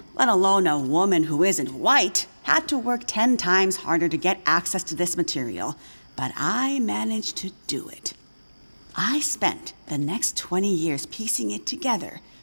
let alone a woman who isn't white, had to work 10 times harder to get access to this material, but I managed to do it. I spent the next 20 years piecing it together,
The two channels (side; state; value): both; inverted; correlation -1.00